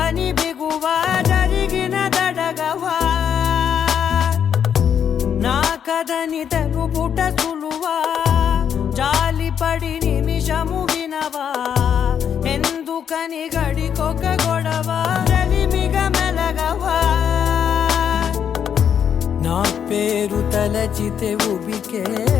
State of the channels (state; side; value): quieter; right; 8.3 dB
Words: బిగువా, జరిగిన దడగవా. నా కథని తెలుపుట సులువా, జాలిపడి నిమిషము వినవా, ఎందుకని గడికొక గొడవ, రలిమిగ మెలగవా. నా పేరు తలచితే